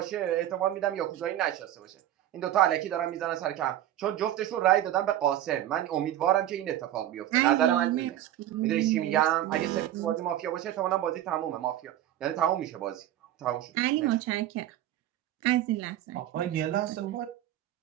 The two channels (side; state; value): left; quieter; 12.6 dB